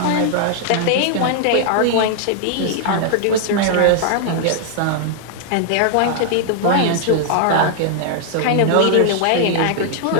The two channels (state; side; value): different; both; correlation 0.00